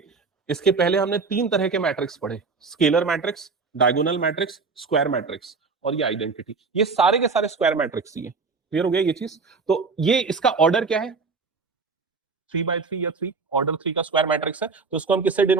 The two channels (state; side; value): quieter; left; 4.6 dB